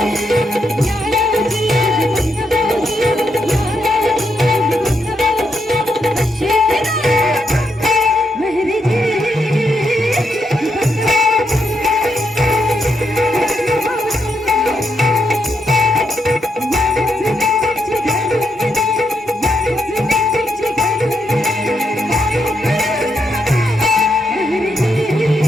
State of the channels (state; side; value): normal; both; correlation 0.80